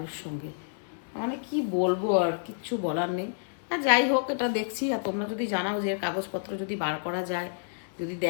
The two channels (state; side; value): silent; right; digital silence